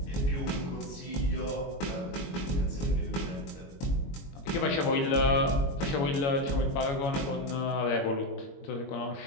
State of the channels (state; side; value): late; right; 22 ms